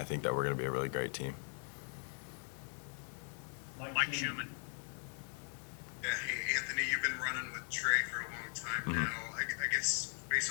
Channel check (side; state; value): right; silent; 52 dB below the other